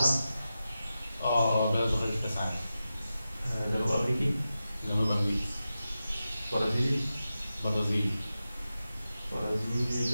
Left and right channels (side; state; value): both; inverted; correlation -0.92